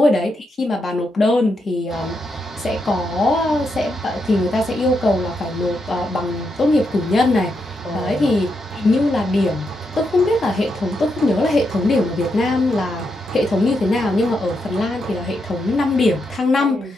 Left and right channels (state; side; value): normal; both; correlation 0.82